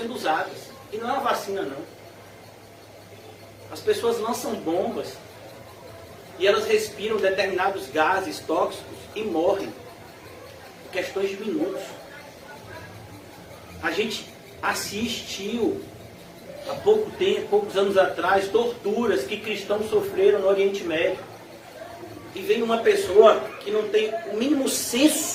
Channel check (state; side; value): identical; both; correlation 1.00